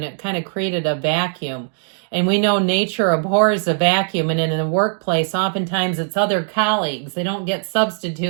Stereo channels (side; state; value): left; silent; digital silence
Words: it kind of created a vacuum. And we know nature abhors a vacuum, and in the workplace, oftentimes it's other colleagues. They don't get